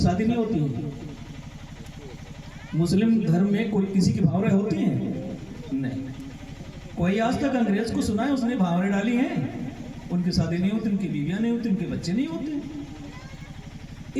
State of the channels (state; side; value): identical; both; correlation 1.00